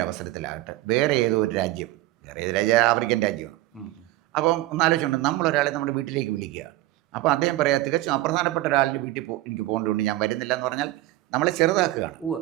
അവസരത്തിലാകട്ടെ വേറെ ഏത് രാജ്യം, ആഫ്രിക്കൻ രാജ്യമാണ്. അപ്പം ഒന്നാലോചിച്ചുകൊണ്ട് നമ്മളൊരാളെ നമ്മുടെ വീട്ടിലേക്ക് വിളിക്കുക. അപ്പോൾ അദ്ദേഹം പറയാം തികച്ചും അപ്രധാനപ്പെട്ട ഒരാളുടെ വീട്ടിൽ എനിക്ക് പോകേണ്ടതുകൊണ്ട് ഞാൻ വരുന്നില്ല എന്ന് പറഞ്ഞാൽ നമ്മളെ ചെറുതാക്കുകയാണ്.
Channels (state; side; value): quieter; left; 17.3 dB